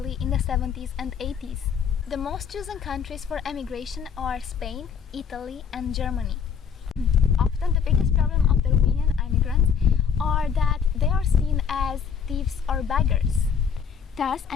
in the 70s and 80s. The most chosen countries for emigration are Spain, Italy and Germany. Often the biggest problem of the Romanian immigrants are that they are seen as thieves or beggars. Thus,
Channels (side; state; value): right; quieter; 7.0 dB